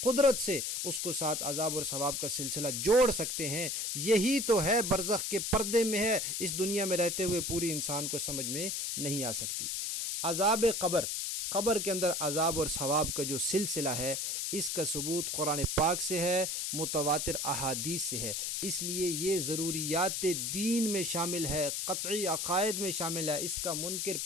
قدرت سے اس کو ساتھ عذاب اور ثواب کا سلسلہ جوڑ سکتے ہیں۔ یہی تو ہے برزخ کے پردے میں ہے، اس دنیا میں رہتے ہوئے پوری انسان کو سمجھ میں نہیں آ سکتی۔ عذاب قبر، قبر کے اندر عذاب اور ثواب کا جو سلسلہ ہے اس کا ثبوت قرآن پاک سے ہے، متواتر احادیث سے ہے، اس لیے یہ ضروریات دین میں شامل ہے، قطعی عقائد میں شامل ہے۔ اس کا منکر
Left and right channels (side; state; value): left; noise; hiss, 1 dB below the sound